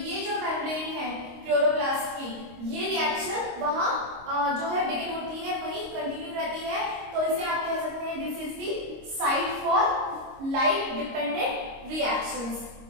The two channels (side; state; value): left; late; 25 ms